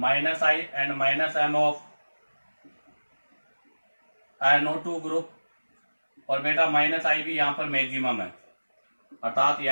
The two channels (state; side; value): inverted; both; correlation -1.00